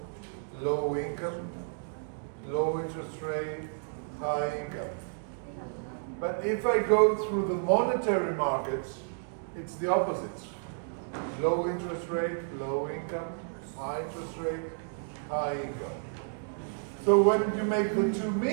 low income, low interest rate, high income. But if I go through the monetary markets, it's the opposite. Low interest rate, low income, high interest rate, high income. So when you make the two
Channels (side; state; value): left; silent; digital silence